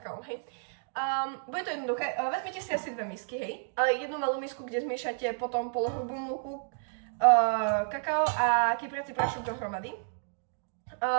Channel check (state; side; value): silent; left; digital silence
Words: hej. Bude to jednoduché, vezmite si asi dve misky, hej. Jednu malú misku, kde zmiešate potom polohrubú múku, kakao a kypriaci prášok dohromady.